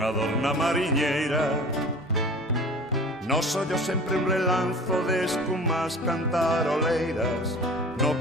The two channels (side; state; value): both; normal; correlation 0.41